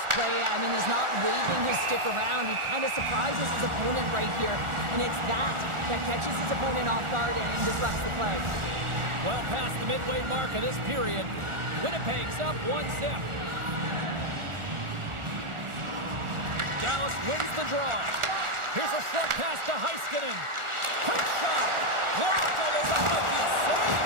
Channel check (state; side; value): late; left; 1.4 ms